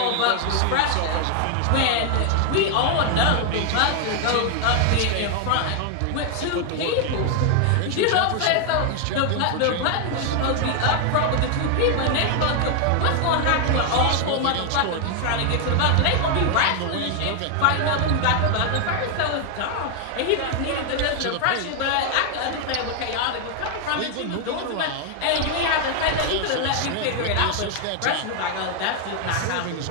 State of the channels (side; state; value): both; different; correlation 0.00